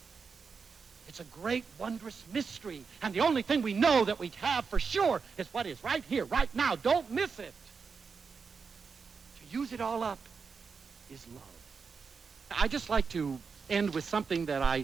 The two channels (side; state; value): left; quieter; 5.4 dB